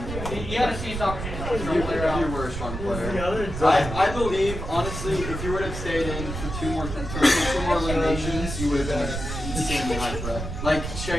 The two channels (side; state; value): right; noise; rumble, 6 dB below the sound